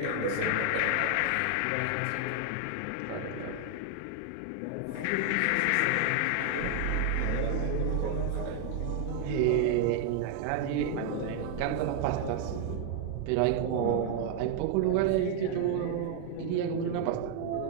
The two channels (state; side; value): different; both; correlation 0.00